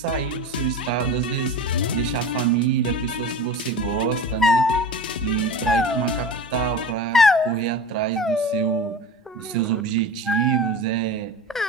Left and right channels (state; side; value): normal; both; correlation 0.33